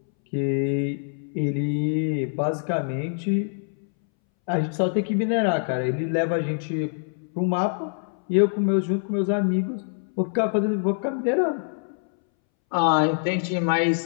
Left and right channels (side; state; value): right; silent; 62 dB below the other